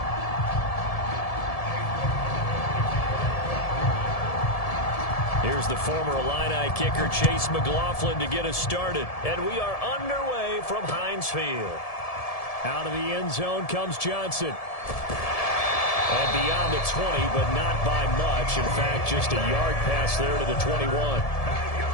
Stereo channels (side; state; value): right; late; 1.7 ms